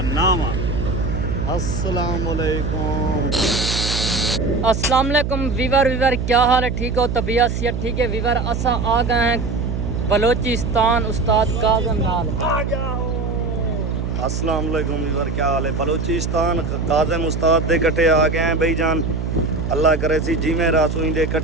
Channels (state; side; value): noise; right; hum, 2 dB below the sound